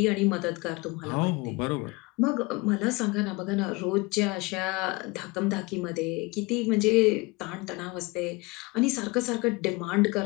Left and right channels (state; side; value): quieter; right; 24.7 dB